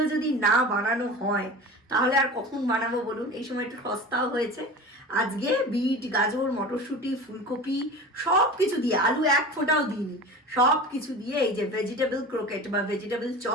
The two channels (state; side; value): normal; both; correlation 0.34